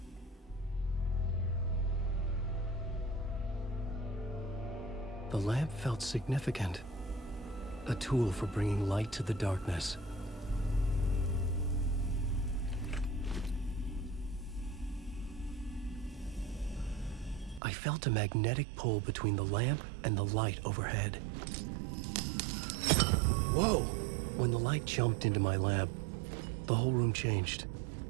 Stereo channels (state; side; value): drops out; left; at 17.6 s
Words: The lamp felt significant. A tool for bringing light to the darkness. I felt a magnetic pull between the lamp and the light overhead. Whoa! When the light jumped into my lamp, the whole room changed,